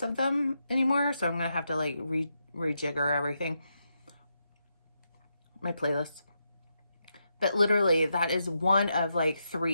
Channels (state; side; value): inverted; both; correlation -0.83